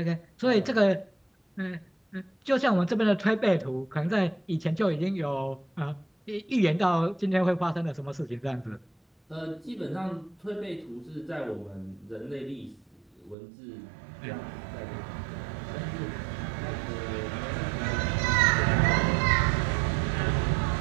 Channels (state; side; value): drops out; left; at 13.4 s